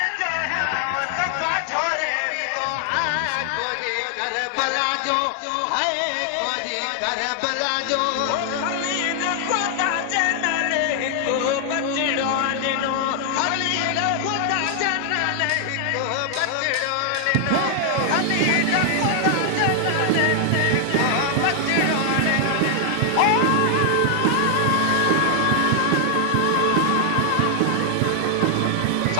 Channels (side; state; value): both; different; correlation 0.00